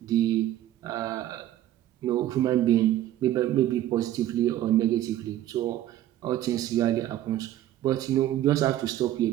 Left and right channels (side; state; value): left; quieter; 13.0 dB